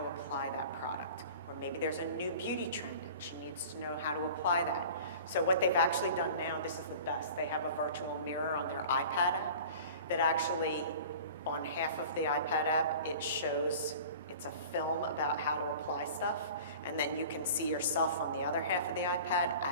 to apply that product. Or maybe there's a new beauty trend and she needs to know how to apply that. So what they've actually done now, this is the best, they have a virtual mirror on their iPad app that actually, on half of the iPad app, it shows, it's a film about how to apply stuff, and then you can see yourself on the other half of the iPad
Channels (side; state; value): both; inverted; correlation -0.41